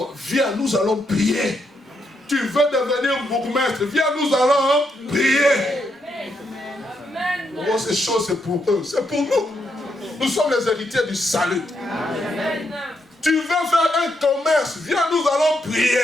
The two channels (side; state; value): both; normal; correlation 0.79